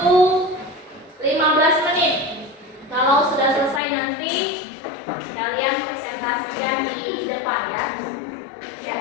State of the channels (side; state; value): right; drops out; at 3.8 s